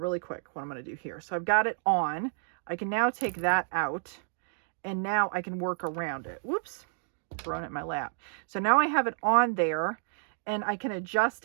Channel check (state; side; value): silent; left; digital silence